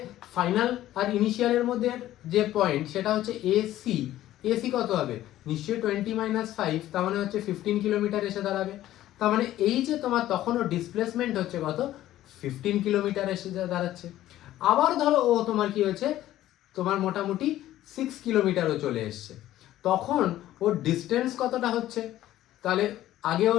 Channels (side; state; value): right; quieter; 13.9 dB